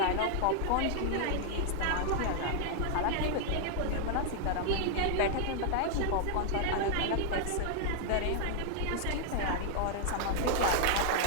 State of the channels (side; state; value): both; different; correlation 0.00